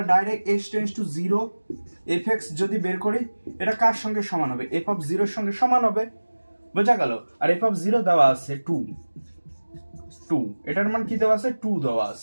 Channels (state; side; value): inverted; both; correlation -1.00